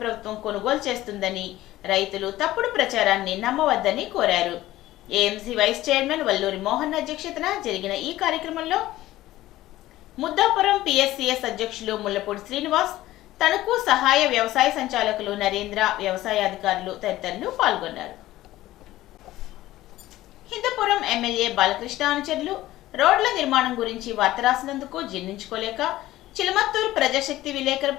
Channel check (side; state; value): right; quieter; 15.8 dB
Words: ప్రభుత్వం కొనుగోలు చేస్తుందని, రైతులు తప్పుడు ప్రచారాన్ని నమ్మవద్దని కోరారు. AMC vice chairman Valluri Mohan అధ్యక్షతన జరిగిన ఈ కార్యక్రమంలో ముద్దాపురం పిఎస్సిఎస్ అధ్యక్షులు ముల్లపూడి శ్రీనివాస్, తణుకు సహాయ వ్యవసాయ సంచాలకులు నరేంద్ర, వ్యవసాయ అధికారులు తదితరులు పాల్గొన్నారు. హిందూపురం ఎమ్మెల్యే బాలకృష్ణ అనుచరులు రోడ్ల నిర్మాణం గురించి వార్త రాసినందుకు జీర్ణించుకోలేక చిలమత్తూరు ప్రజాశక్తి